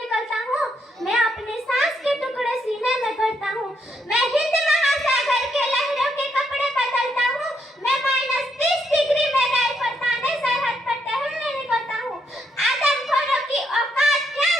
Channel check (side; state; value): both; normal; correlation 0.76